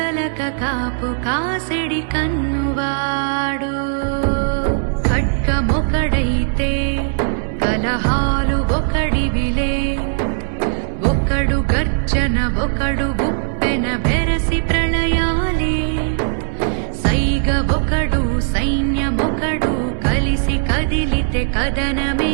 కాపు కాసెడి కన్నువాడు ఖడ్గమొకడైతే కలహాలు ఒకడివిలే ఒకడు గర్జన ఒకడు ఉప్పెన బెరసి ప్రళయాలే సైగ ఒకడు సైన్యమొకడు కలిసి కదిలితే కదనమే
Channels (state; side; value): silent; left; digital silence